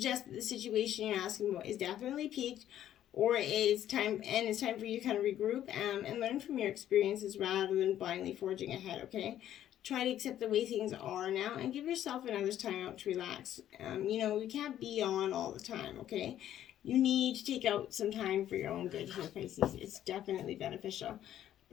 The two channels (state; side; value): quieter; right; 11.6 dB